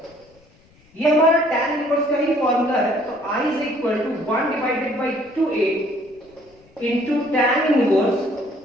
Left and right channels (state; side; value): noise; left; rumble, 30 dB below the sound